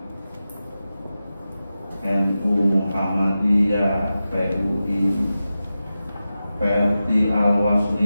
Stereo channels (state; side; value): inverted; both; correlation -0.93